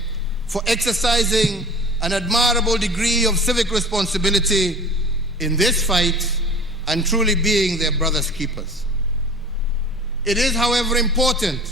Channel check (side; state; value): both; normal; correlation 0.40